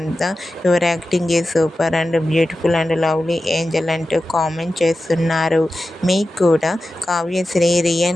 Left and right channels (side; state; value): both; normal; correlation 0.93